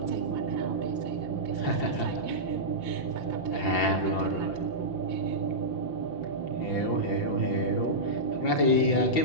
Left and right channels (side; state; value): right; late; 5.8 ms